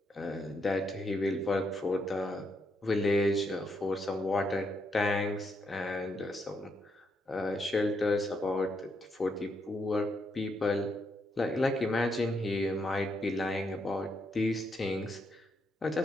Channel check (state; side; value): normal; both; correlation 0.78